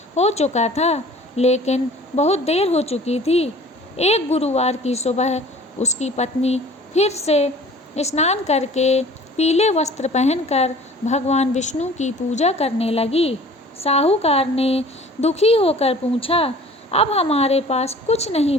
हो चुका था, लेकिन बहुत देर हो चुकी थी। एक गुरुवार की सुबह उसकी पत्नी फिर से स्नान करके पीले वस्त्र पहनकर भगवान विष्णु की पूजा करने लगी। साहूकार ने दुखी होकर पूछा, अब हमारे पास कुछ नहीं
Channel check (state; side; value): normal; both; correlation 0.47